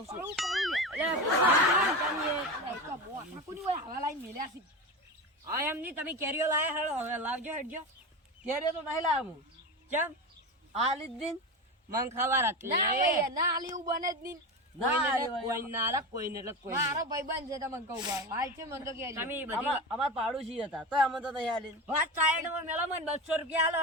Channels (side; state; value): both; normal; correlation 0.23